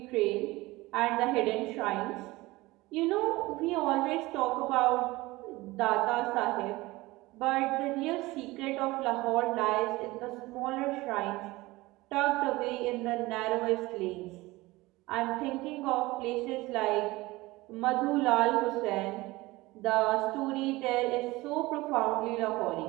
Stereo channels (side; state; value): left; quieter; 20.4 dB